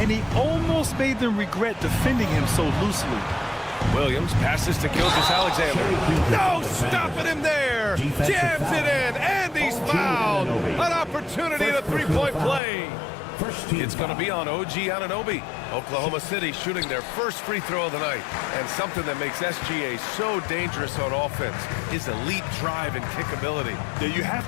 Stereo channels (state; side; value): drops out; right; at 12.6 s